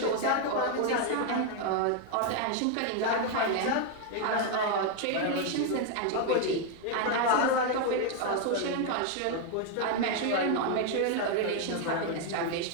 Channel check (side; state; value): both; different; correlation 0.01